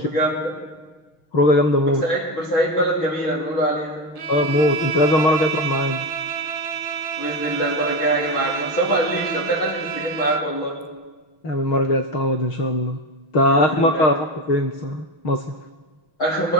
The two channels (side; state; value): right; late; 6.4 ms